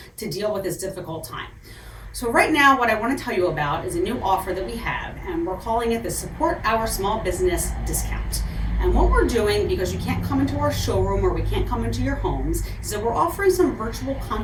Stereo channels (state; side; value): identical; both; correlation 1.00